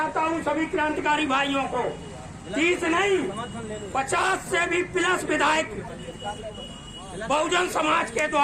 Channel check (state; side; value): identical; both; correlation 1.00